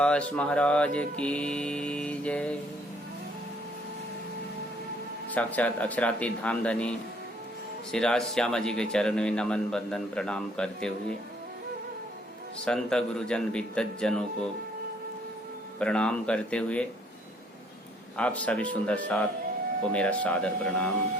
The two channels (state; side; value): normal; both; correlation 0.63